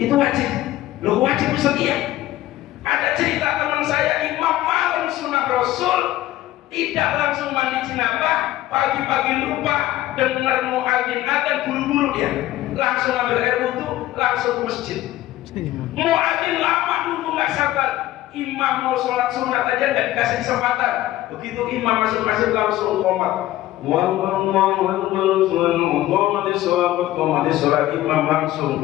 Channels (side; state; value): right; quieter; 15.1 dB